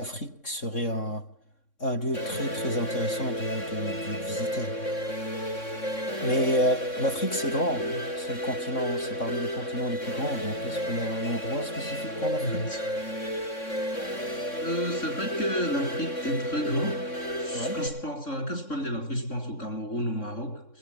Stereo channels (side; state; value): right; late; 3.6 ms